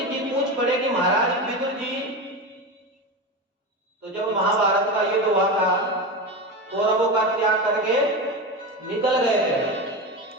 जी पूछ पड़े कि महाराज विदुर जी, तो जब महाभारत का युद्ध हुआ था कौरवों का त्याग करके निकल गए थे,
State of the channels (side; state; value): both; normal; correlation 0.21